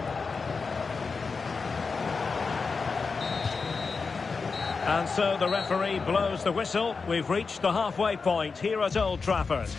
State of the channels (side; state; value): right; quieter; 4.7 dB